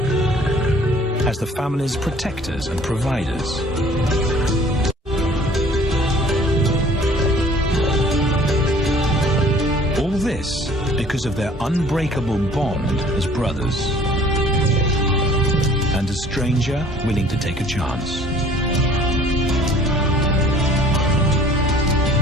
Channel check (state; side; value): normal; both; correlation 0.53